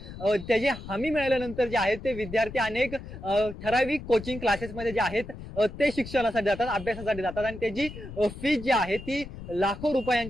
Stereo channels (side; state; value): left; noise; rumble, 12 dB below the sound